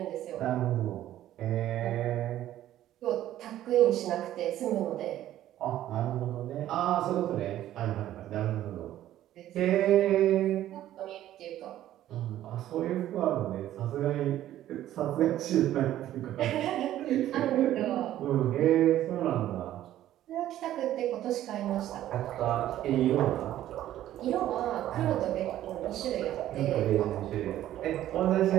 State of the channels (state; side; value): quieter; left; 13.0 dB